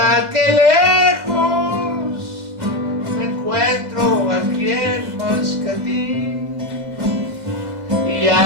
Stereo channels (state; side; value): late; left; 2.0 ms